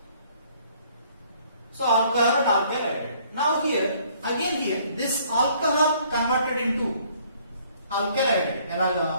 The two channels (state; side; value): inverted; both; correlation -0.61